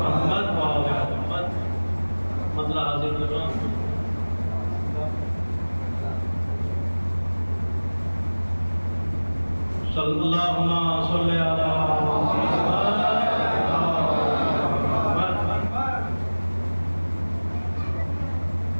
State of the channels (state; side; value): inverted; both; correlation -1.00